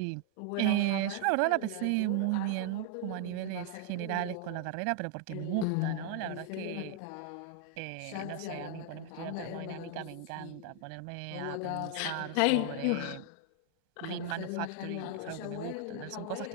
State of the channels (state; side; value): different; both; correlation 0.00